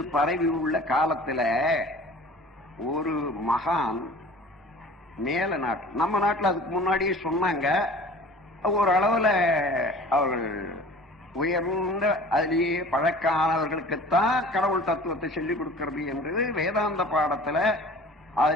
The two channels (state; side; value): normal; both; correlation 0.44